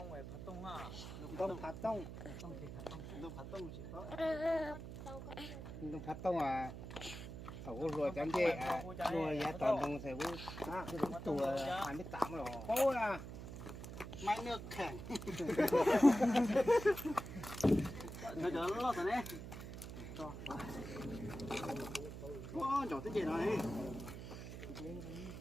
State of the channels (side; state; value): right; noise; hum, 9 dB below the sound